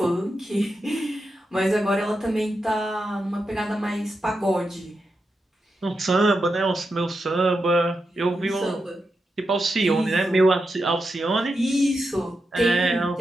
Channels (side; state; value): both; normal; correlation 0.87